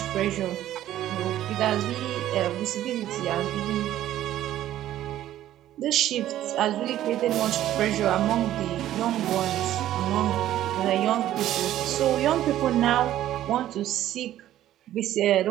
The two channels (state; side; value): quieter; left; 12.9 dB